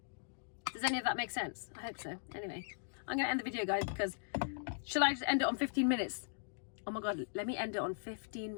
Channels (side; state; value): right; silent; digital silence